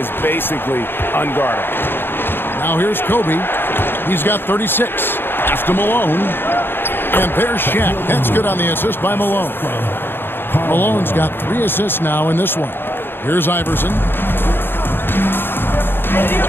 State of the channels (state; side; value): late; right; 0.10 ms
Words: basically unguardable. Now here's Kobe. He's got 36. Pass to Malone. And there's Shaq. That's good on the assist by Malone. Malone's got 3 assists now in this one. Here's Iverson.